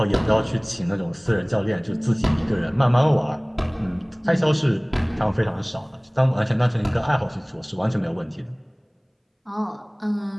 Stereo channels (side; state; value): both; identical; correlation 1.00